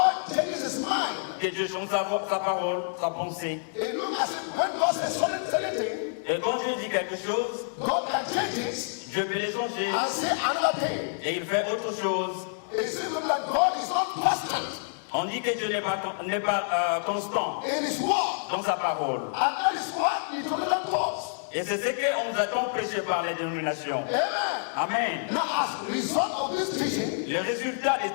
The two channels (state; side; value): silent; right; digital silence